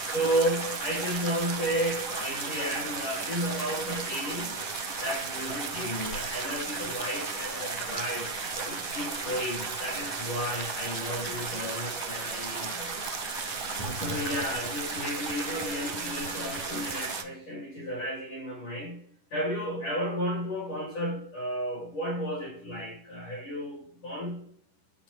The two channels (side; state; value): right; late; 10 ms